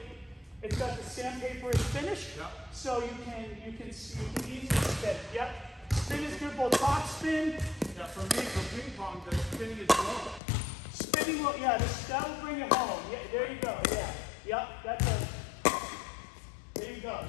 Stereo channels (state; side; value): drops out; right; at 10.4 s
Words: It's got the sandpaper is finished, so you can easily spin. Yep. Spin is good, both top spin. Yeah, for me, for ping pong, the spinning is low. Spinning will, that will bring it home. Yeah, there you go. Yeah. Yep. There you go.